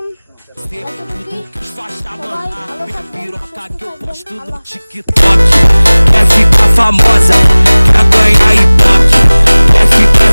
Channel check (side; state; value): both; inverted; correlation -1.00